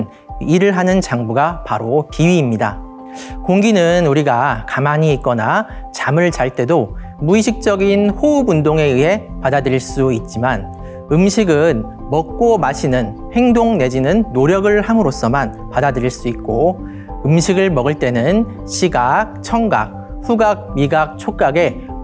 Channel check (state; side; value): identical; both; correlation 1.00